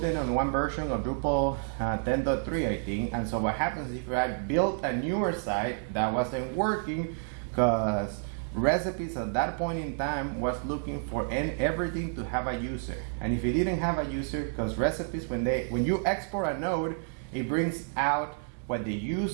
it on one version of Drupal 10.3, I think. And so what happens if I built a newer site that wasn't working, because recipes at that point in time was looking for everything to have a user. And if it didn't have a user, because recipes, when you export a node, it brings out what the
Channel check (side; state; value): left; silent; 58 dB below the other